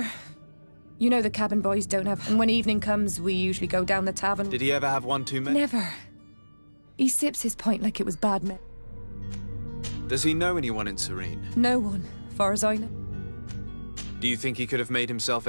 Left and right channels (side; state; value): both; inverted; correlation -1.00